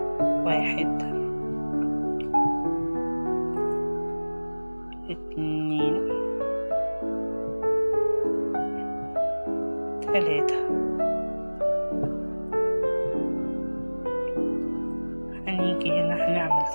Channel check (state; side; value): inverted; both; correlation -1.00